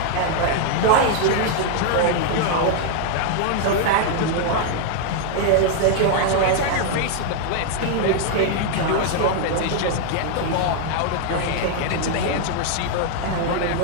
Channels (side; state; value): both; different; correlation 0.00